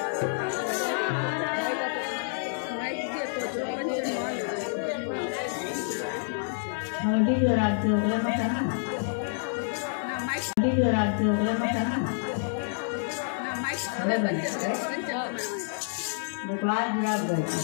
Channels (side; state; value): right; silent; digital silence